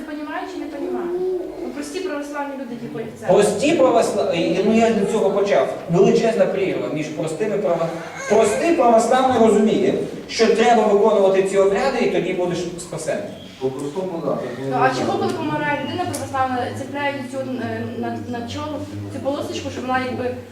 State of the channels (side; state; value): both; identical; correlation 1.00